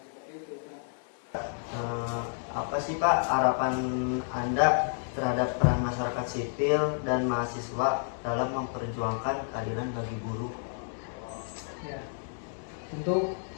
Itu. Apa sih Pak harapan Anda terhadap peran masyarakat sipil dan mahasiswa dalam memperjuangkan keadilan bagi buruh? Ya, tentu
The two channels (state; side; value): silent; right; digital silence